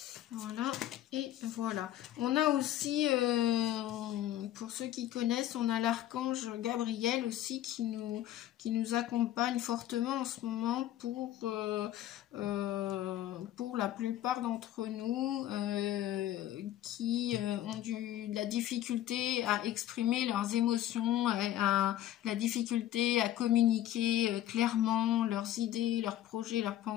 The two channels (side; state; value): right; quieter; 12.8 dB